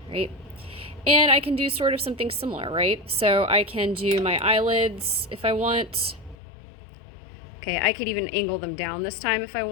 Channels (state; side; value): drops out; right; at 6.4 s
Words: right? And I can do sort of something similar, right? So I can do my eyelids if I want. Okay, I could even angle them down this time if I